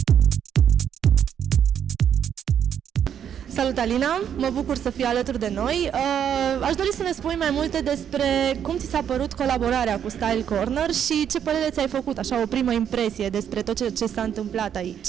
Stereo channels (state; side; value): quieter; left; 8.9 dB